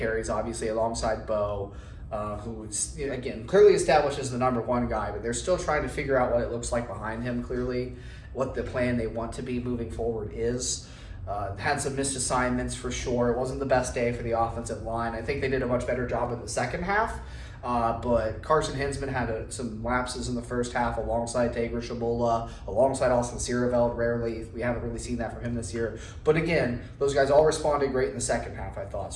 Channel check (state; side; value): identical; both; correlation 1.00